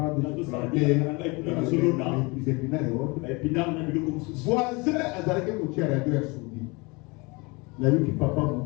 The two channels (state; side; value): quieter; right; 27.2 dB